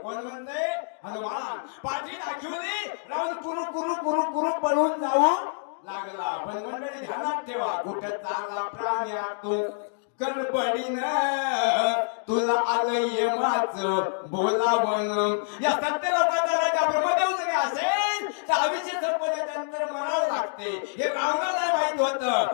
कोण म्हणते हनुमान. पाठी दाखवली रावण कुरु कुरु कुरु कुरु पळून जाऊ लागला. पण मंडळी ध्यानात ठेवा कुठे चांगला प्राणी आतून गडबडीनं तुला आलं यमाचं बोलावण. या सत्य लोकांचा राजा ब्रह्मदेव जरी असेल तर अभिषेक संपल्याच्या नंतर मरावं लागते हे रावणाला माहित होतं,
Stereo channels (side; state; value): right; silent; digital silence